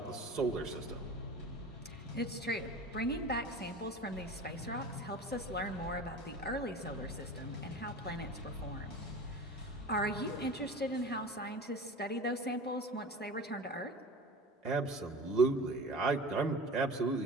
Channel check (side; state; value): both; normal; correlation 0.36